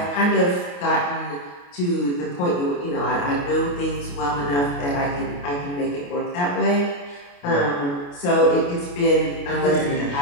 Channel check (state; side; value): late; right; 28 ms